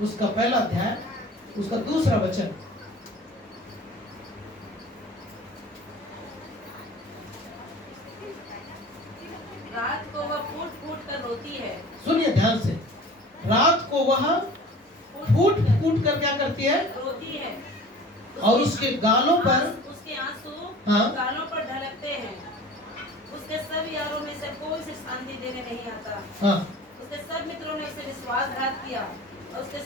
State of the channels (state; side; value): normal; both; correlation 0.42